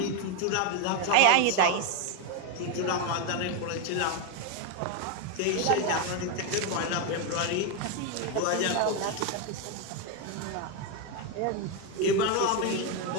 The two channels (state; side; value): different; both; correlation 0.02